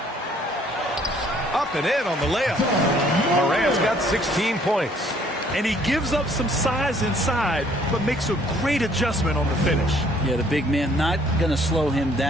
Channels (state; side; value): normal; both; correlation 0.61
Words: Up and in on the layup. Morant's got 16 points. And he gives up some size inside, but makes a great adjustment on the finish. Yeah, the big man not going to slow him